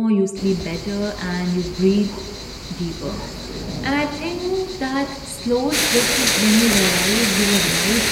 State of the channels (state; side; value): identical; both; correlation 1.00